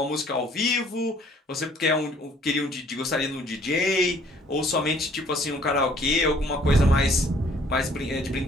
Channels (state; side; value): normal; both; correlation 0.59